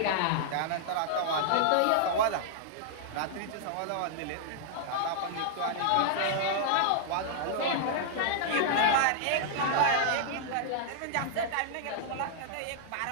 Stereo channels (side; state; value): both; different; correlation -0.01